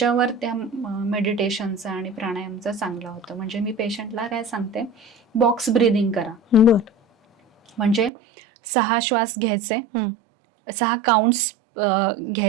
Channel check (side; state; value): left; drops out; at 8.1 s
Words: त्या मेडिटेशनचा आणि प्राणायामचा चांगला होतं. म्हणजे मी पेशंटला काय सांगते, बॉक्स ब्रीदिंग करा. म्हणजे 6 श्वास घ्यायचे, 6 काउंट्स